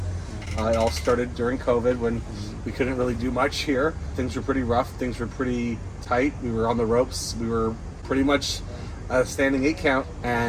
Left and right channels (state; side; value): identical; both; correlation 1.00